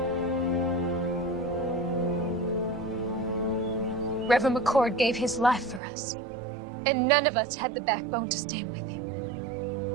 Reverend McCord gave his life for us, and none of us had the backbone to stand with him.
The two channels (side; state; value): left; drops out; at 5.8 s